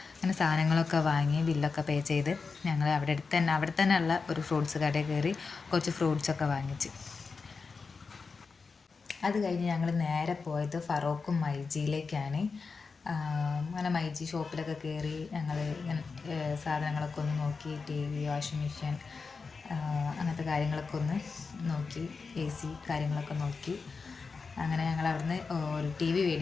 അങ്ങനെ സാധനങ്ങളൊക്കെ വാങ്ങി ബില്ലൊക്കെ പേ ചെയ്ത് ഞങ്ങൾ അവിടെ തന്നെ ഉള്ള ഒരു ഫ്രൂട്ട്സ് കടയിൽ കയറി കുറച്ച് ഫ്രൂട്ട്സൊക്കെ വാങ്ങിച്ച്. അത് കഴിഞ്ഞ് ഞങ്ങൾ നേരെ പോയത് ഫറോക്കും മൈജിയിലേക്കാണ്. അങ്ങനെ മൈജി ഷോപ്പിലൊക്കെ കയറി ഞങ്ങൾ സാധനങ്ങളൊക്കെ ഒന്ന് നോക്കി. TV, വാഷിംഗ് മെഷീൻ, അങ്ങനത്തെ കാര്യങ്ങളൊക്കെ ഒന്ന് നോക്കി. AC കാര്യങ്ങളൊക്കെ നോക്കി. അങ്ങനെ ഞങ്ങൾ അവിടുന്ന് ഒരു TV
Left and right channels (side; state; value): right; quieter; 4.7 dB